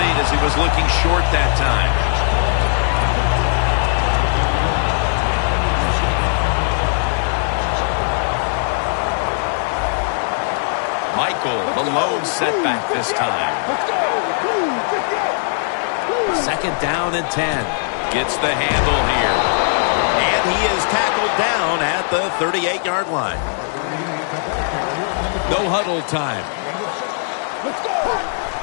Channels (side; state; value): right; silent; digital silence